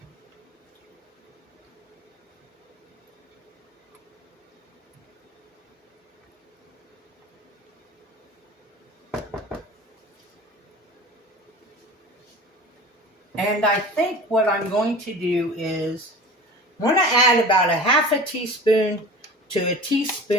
And I think what I'm going to do is I'm going to add about 1/2 teaspoon to a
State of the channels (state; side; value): normal; both; correlation 0.37